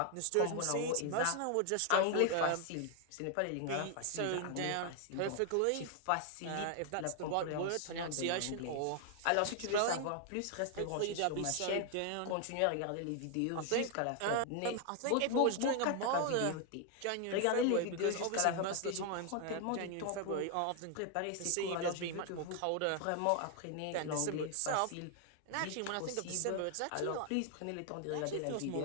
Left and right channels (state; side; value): different; both; correlation 0.00